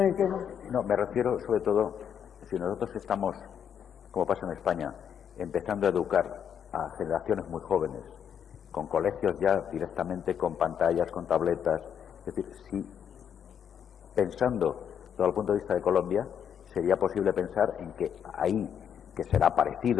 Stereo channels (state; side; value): quieter; right; 8.4 dB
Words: el tema? No, me refiero sobre todo, si nosotros estamos, como pasa en España, empezando a educar a generaciones muy jóvenes, con colegios ya directamente con pantallas, con tabletas, es decir, si pensando visto desde el punto de vista de Colombia, sería posible pensar en que ahí, que será